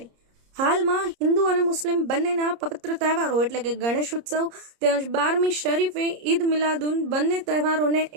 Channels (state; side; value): late; left; 30 ms